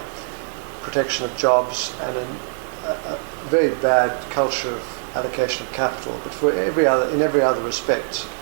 protection of jobs and a very bad culture of allocation of capital. But in every other respect,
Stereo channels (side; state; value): left; silent; 57 dB below the other